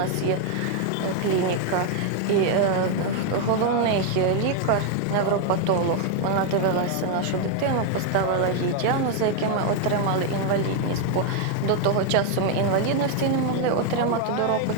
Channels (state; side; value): different; both; correlation 0.00